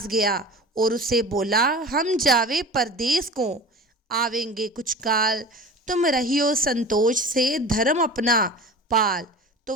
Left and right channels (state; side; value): normal; both; correlation 0.36